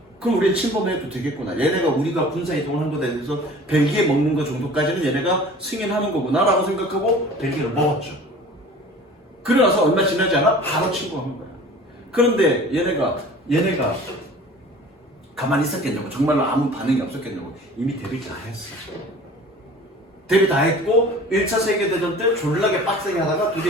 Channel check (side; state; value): both; normal; correlation 0.44